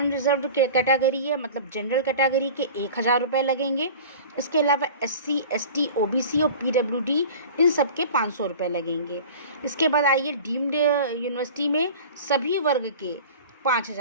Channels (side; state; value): both; inverted; correlation -0.39